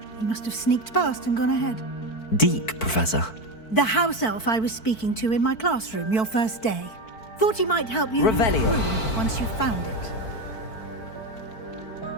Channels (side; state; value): right; late; 4.5 ms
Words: He must have sneaked past and gone ahead. Deke, Professor. The house elf I was speaking to in my classroom your first day. Thought he might help you Revelio. in the room once you found it.